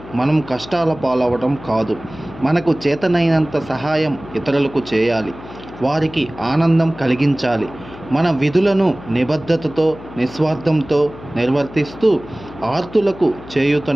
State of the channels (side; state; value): left; noise; hum, 17 dB below the sound